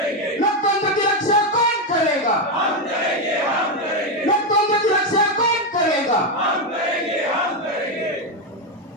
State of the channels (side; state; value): both; normal; correlation 0.07